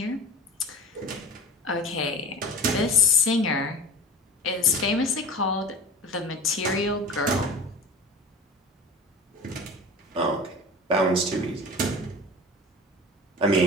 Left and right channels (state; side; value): normal; both; correlation 0.36